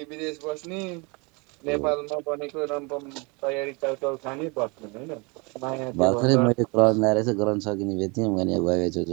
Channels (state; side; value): quieter; left; 29.3 dB